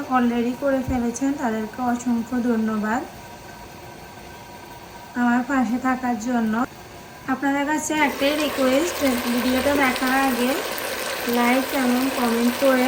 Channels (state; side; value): identical; both; correlation 1.00